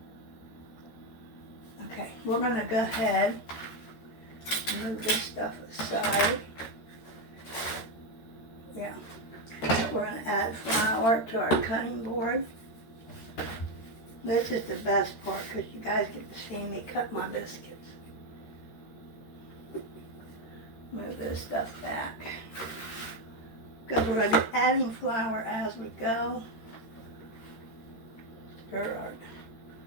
Okay, we're going to go ahead and move this stuff aside. Yeah. We're going to add flour to our cutting board. This is the best part because you guys get to see me cut my biscuits. Move this stuff back. Because we're going to be adding flour as we go. Stir our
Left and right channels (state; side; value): late; right; 13 ms